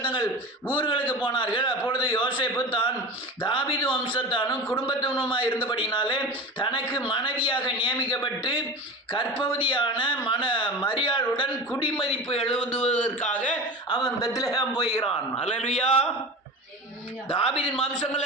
ஊர்களுக்கு போனார்கள். அப்பொழுது யோசேப்பு தான் தாவீது வம்சத்தானும் குடும்பத்தினுமாய் இருந்தபடினாலே தனக்கு மனைவியாக நியமிக்கப்பட்டு கர்ப்பவதியான மரியாளுடன் குடிமதிப்பு எழுதுவதற்காக அவன் பெத்லெகேம் போகிறான். அல்லேலூயா. தாவீதின்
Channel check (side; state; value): both; normal; correlation 0.30